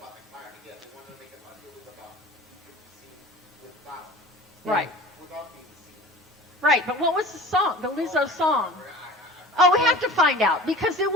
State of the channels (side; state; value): both; normal; correlation 0.40